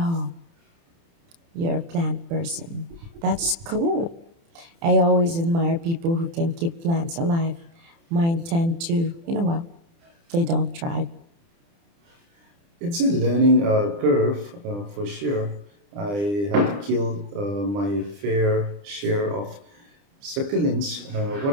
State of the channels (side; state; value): left; late; 30 ms